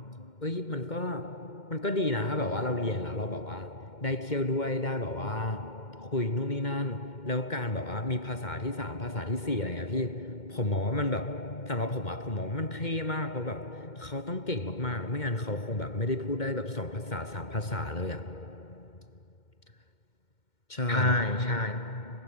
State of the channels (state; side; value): late; right; 2.1 ms